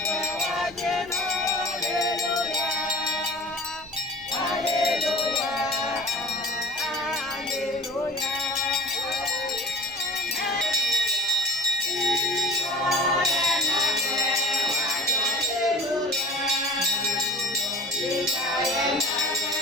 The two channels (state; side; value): normal; both; correlation 0.41